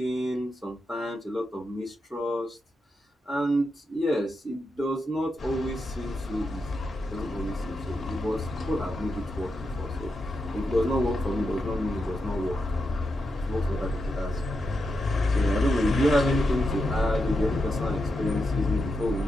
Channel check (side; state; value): both; normal; correlation 0.86